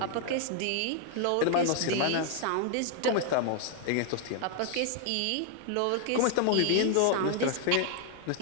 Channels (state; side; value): different; both; correlation 0.00